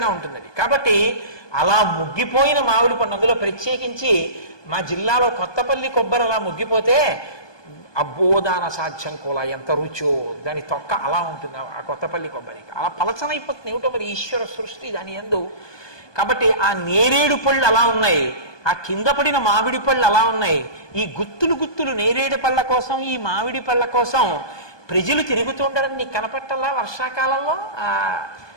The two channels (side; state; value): right; late; 1.2 ms